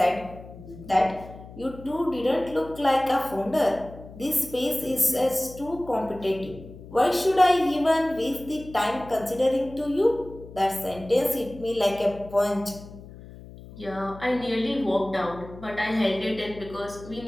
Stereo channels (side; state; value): left; noise; hum, 17 dB below the sound